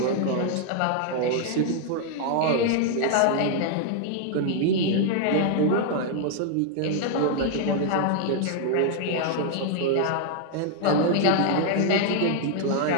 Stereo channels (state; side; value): different; both; correlation 0.00